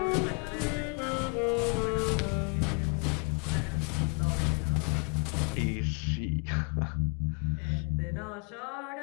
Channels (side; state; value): right; quieter; 35.6 dB